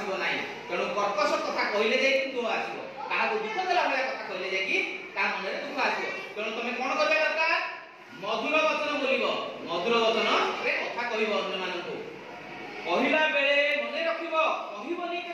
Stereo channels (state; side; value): identical; both; correlation 1.00